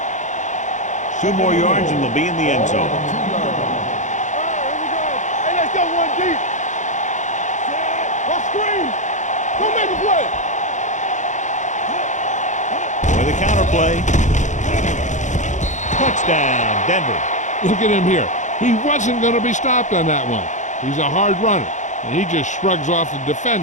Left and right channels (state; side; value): late; right; 0.35 ms